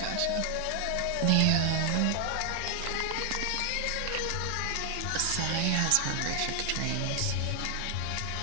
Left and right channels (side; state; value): both; different; correlation 0.00